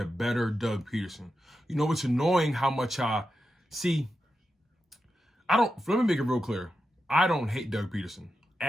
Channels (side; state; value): both; normal; correlation 0.89